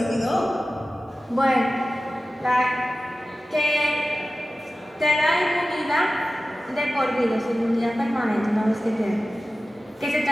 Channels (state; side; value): normal; both; correlation 0.95